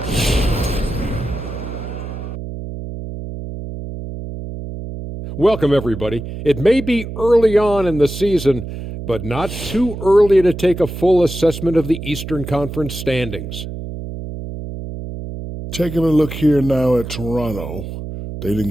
Welcome, everybody. It may be early on in the season, but not too early to take a full assessment of the Eastern Conference standings. Taking a look here now at Toronto. They didn't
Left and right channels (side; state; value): right; noise; hum, 9 dB below the sound